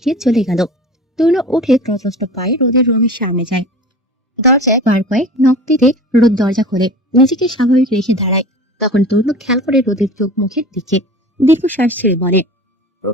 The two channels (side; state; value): both; normal; correlation 0.37